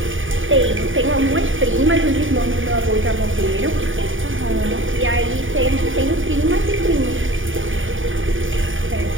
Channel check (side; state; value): left; late; 0.57 ms